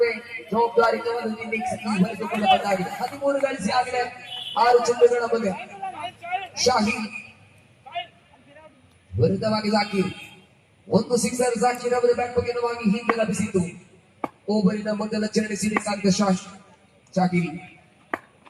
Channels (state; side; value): identical; both; correlation 1.00